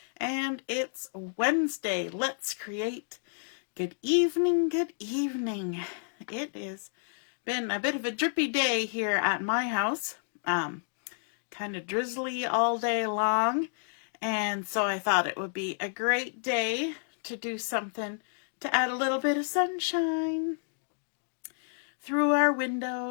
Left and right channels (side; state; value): right; silent; digital silence